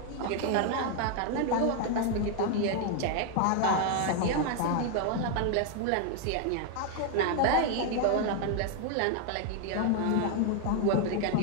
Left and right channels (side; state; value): both; different; correlation 0.00